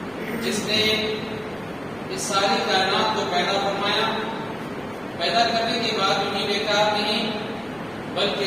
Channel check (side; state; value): right; noise; rumble, 27 dB below the sound